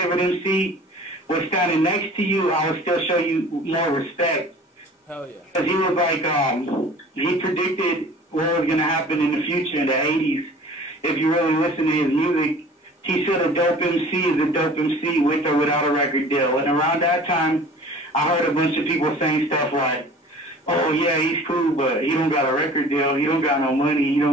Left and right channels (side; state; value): both; normal; correlation 0.45